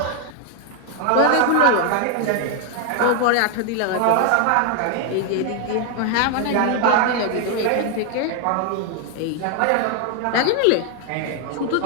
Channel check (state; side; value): different; both; correlation 0.00